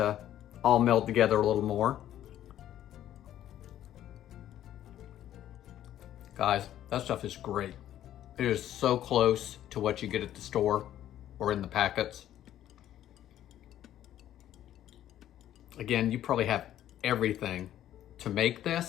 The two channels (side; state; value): right; quieter; 11.9 dB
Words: all meld together a little more. Guys, that stuff is great. It is so close to what you get at the store or in the packets. Again, you probably have everything to make